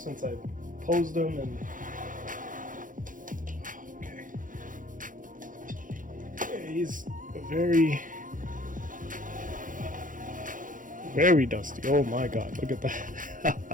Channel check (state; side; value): late; left; 0.39 ms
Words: I posed him. And okay, yeah, he's a very Very dusty. Oh my god, look at